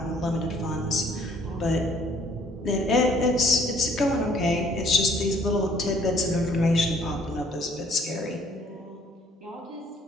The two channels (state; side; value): normal; both; correlation 0.60